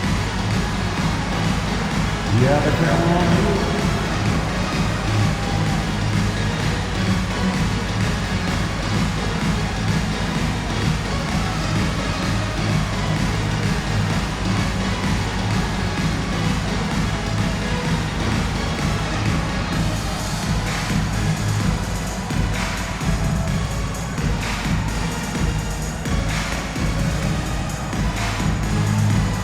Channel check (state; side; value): identical; both; correlation 1.00